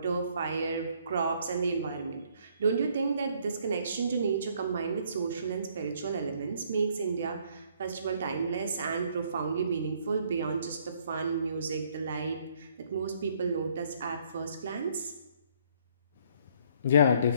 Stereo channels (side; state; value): both; inverted; correlation -0.65